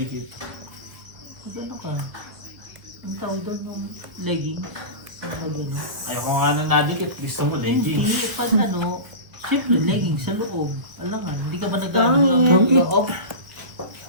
Ano ka? Ang tawag doon ng leggings. Ano? Ayoko nga na nadikit. Gusto mo Hindi. Pag ano, syempre leggings sa loob. Alam nga, hindi ka ba nag-ano Tangin. ng loob?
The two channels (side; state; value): left; late; 1.8 ms